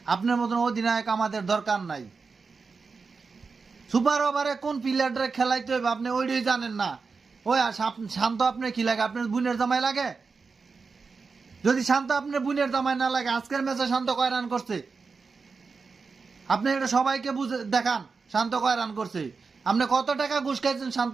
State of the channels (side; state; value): left; quieter; 4.7 dB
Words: আপনার মতন অধিনায়ক আমাদের দরকার নাই। সুপার ওভারে কোন প্লেয়াররা খেলাইতে হবে আপনি ওইটাই জানেন না। ওই শান্ত আপনার কি লাগে? আপনার বুনের জামাই লাগে? যদি শান্ত আপনার বুনের জামাই না লাগে, আজকের ম্যাচে শান্ত কয় রান করছে আপনি এটা সবাইকে বুঝে দেখান। শান্ত কয় রান করছে? আপনি কত টাকা ঘুষ খাইছেন